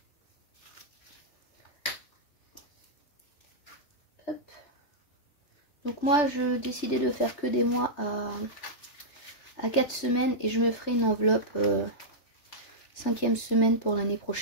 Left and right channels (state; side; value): late; right; 3.3 ms